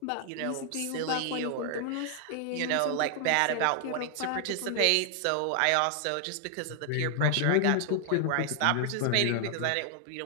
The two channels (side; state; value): both; different; correlation 0.00